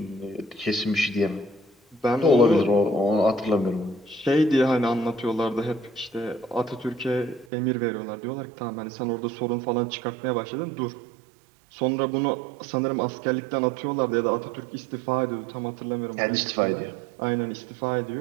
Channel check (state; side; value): drops out; left; at 7.5 s